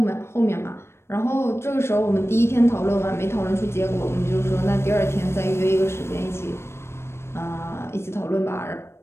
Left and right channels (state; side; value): late; right; 0.12 ms